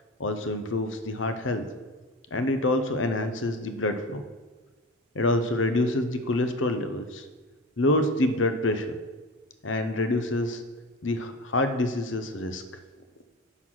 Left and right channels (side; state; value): both; normal; correlation 0.29